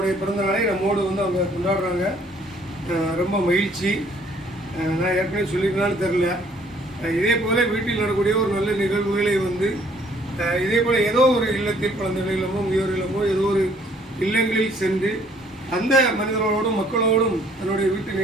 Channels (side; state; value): both; normal; correlation 0.61